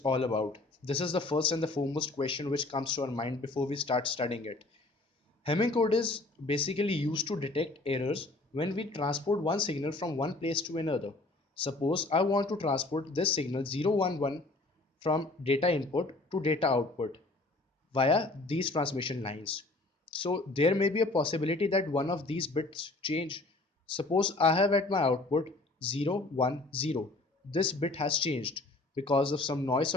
all about. This is the first and the foremost question which comes to our mind before we start studying it. Hemming code is basically used to detect errors when we transport one signal from one place to another. Suppose I want to transport this signal 011 from data input to data output via these transmission lines. So there may be a possibility that one of these bits change. Suppose I have at my output 0, 1, 0. This bit has changed because of some noise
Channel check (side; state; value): right; quieter; 3.0 dB